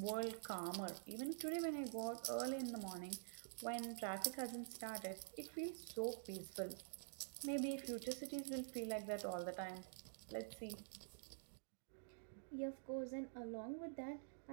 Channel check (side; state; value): left; silent; digital silence